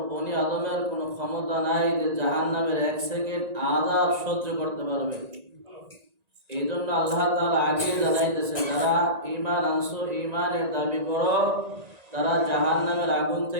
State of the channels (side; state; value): left; late; 1.9 ms